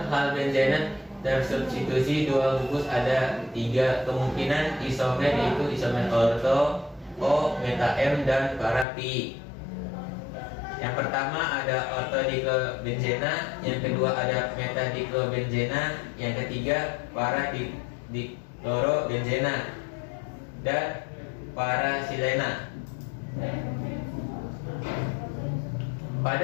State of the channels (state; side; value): drops out; right; at 8.8 s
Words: hal benzena tersubstitusi dua gugus ada tiga kemungkinan isomer, yaitu isomer orto, O, meta M, dan para pi. Yang pertama ada ortodiklobenzena, yang kedua ada metadiklobenzena, yang ketiga para diklorobenzena dan parasilena.